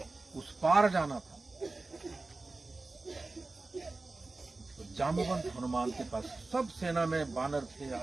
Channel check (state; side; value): quieter; left; 3.4 dB